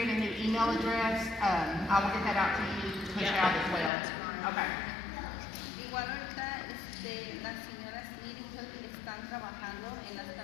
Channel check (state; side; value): drops out; right; at 3.9 s